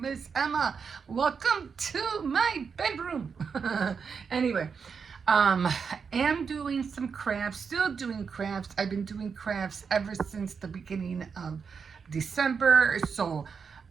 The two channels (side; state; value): left; quieter; 5.9 dB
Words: is Emma. Welcome to my bedroom. Anyway, am doing some crafts, still doing crafts. I've been doing crafts ever since the beginning of December. So